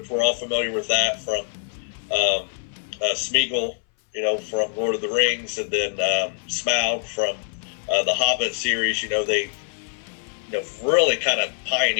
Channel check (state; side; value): silent; right; 63 dB below the other